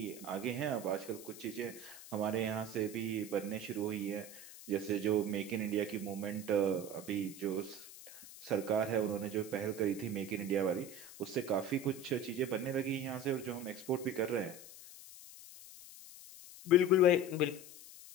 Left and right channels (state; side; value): noise; left; hiss, 16 dB below the sound